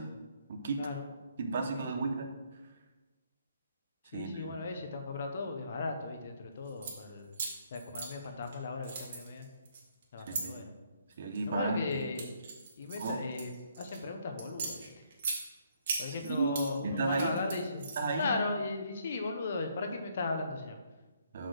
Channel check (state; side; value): inverted; both; correlation -0.69